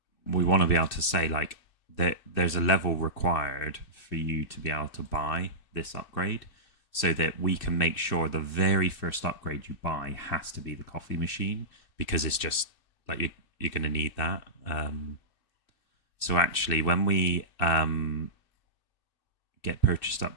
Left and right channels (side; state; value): right; late; 2.6 ms